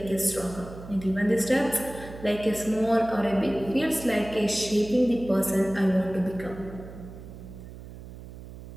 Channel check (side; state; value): right; noise; hum, 14 dB below the sound